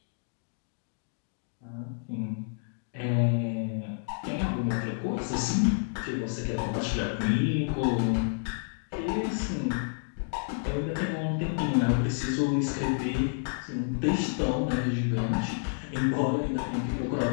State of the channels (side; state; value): right; silent; digital silence